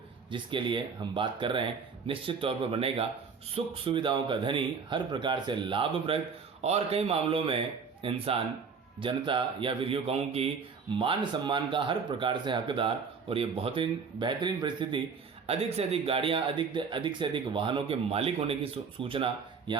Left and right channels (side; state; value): left; quieter; 5.6 dB